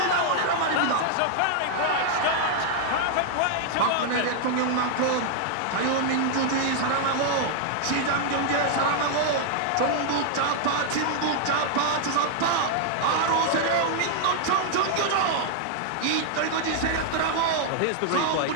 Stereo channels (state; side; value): different; both; correlation -0.01